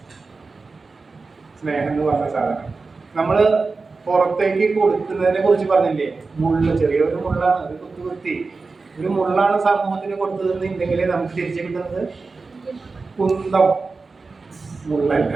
സ്നേഹം എന്ന് പറഞ്ഞ സാധനം നമ്മള് പുറത്തേക്ക് കൊടുക്കുന്നതിനെ കുറിച്ച് പറഞ്ഞില്ലേ? ചെറിയൊരു മുള്ളാണ്, അത് കുത്തി ഒരു മുള്ളാണ് സമൂഹത്തിന് കൊടുത്തതെന്നുണ്ടെങ്കിലേ നമുക്ക് തിരിച്ചു കിട്ടുന്നത് കുന്തം, മുള്ളല്ല.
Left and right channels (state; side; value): quieter; left; 4.1 dB